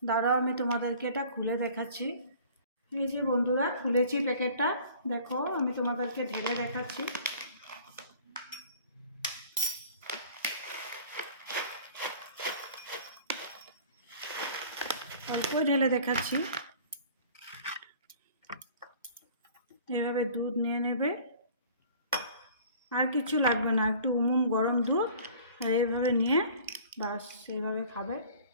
দাঁড়াও, আমি তোমাদেরকে এটা খুলে দেখাচ্ছি। এই যে বন্ধুরা, খুলেছি প্যাকেটটা, দেখো আমি তোমাদেরকে ঢেলে দেখাচ্ছি। অল্পই ঢেলে দেখাচ্ছি। এভাবে দুধ নিয়ে নেবে, আর কিছু লাগবে না, একটু গরম দুধ, আর এইভাবে নিয়ে বাস এইভাবে খাবে।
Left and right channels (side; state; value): both; inverted; correlation -0.48